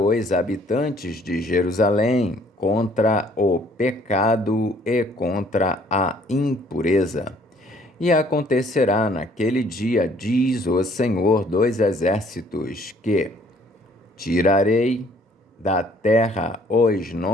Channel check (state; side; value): normal; both; correlation 0.60